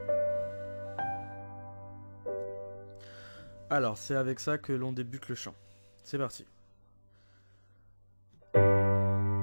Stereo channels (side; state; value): both; inverted; correlation -1.00